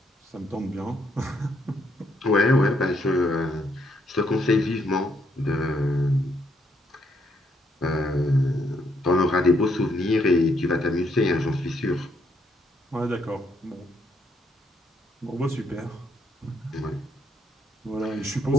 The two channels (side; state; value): both; normal; correlation 0.73